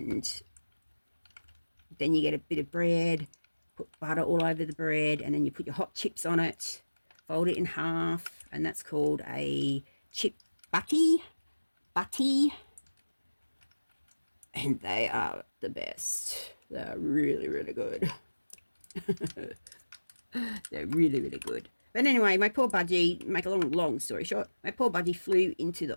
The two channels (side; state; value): both; inverted; correlation -1.00